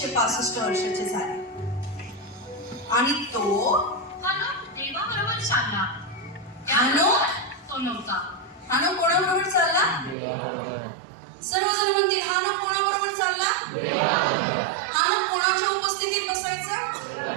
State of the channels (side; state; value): left; drops out; at 10.2 s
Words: वर्षाचे झाले आणि तो हनोक देवाबरोबर चालला. हनोक? तो नव्हता. हानोक कोणाबरोबर चालला? सर्वजण म्हणतील हानोक कोणाबरोबर चालला? हानोक कोणाच्या उपस्थितीत बसायचा?